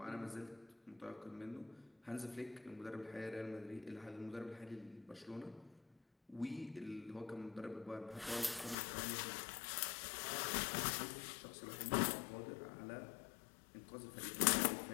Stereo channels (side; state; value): right; drops out; at 8.8 s